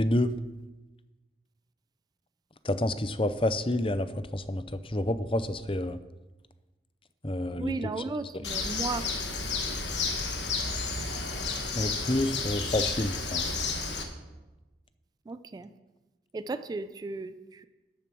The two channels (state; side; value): normal; both; correlation 0.61